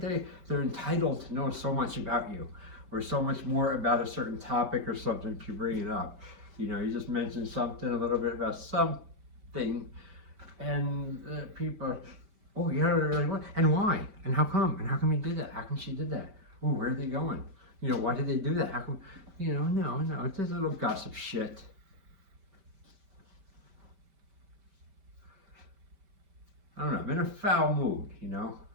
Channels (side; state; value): left; late; 5.1 ms